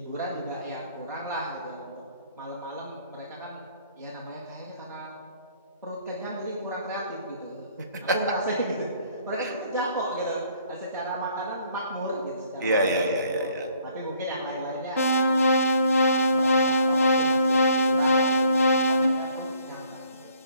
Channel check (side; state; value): both; inverted; correlation -0.63